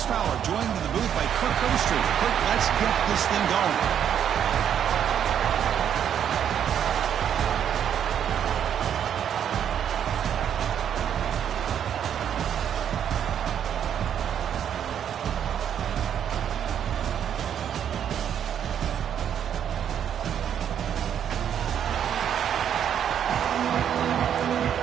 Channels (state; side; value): quieter; left; 9.1 dB